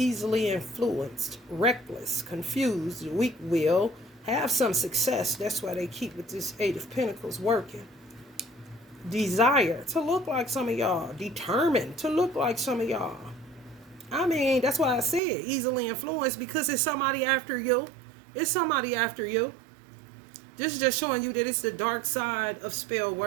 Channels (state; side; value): drops out; left; at 15.2 s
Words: influenced. Reckless. Confused. Weak will. Have some success. That's why they keep with this Eight of Pentacles working. Desire to look like some of y'all. Determined to look like some of y'all. I mean, that's why I said easily influenced, because it's somebody after you. It's somebody after you. This is just showing you that it's the dark side of spell